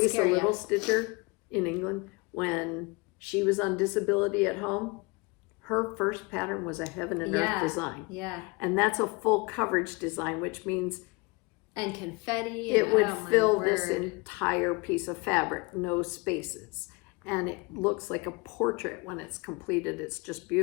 Little Stitcher in England. When she was on disability at home, her first pattern was a heaven and earth design. Yeah. And that's a full coverage design, which means and confetti. It would fill this entire piece of fabric, no spaces. And it looks like a portrait when it's completed. It's just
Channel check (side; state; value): right; quieter; 27.2 dB